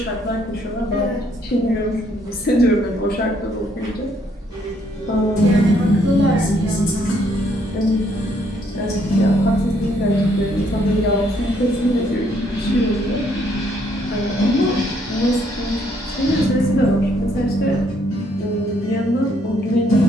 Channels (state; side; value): normal; both; correlation 0.69